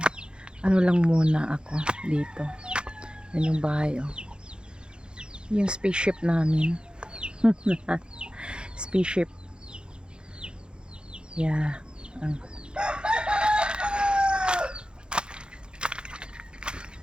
Ano lang muna ako dito. Yan yung bahay oh. Yung spaceship namin. Spaceship. Yeah.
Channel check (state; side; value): late; left; 0.051 ms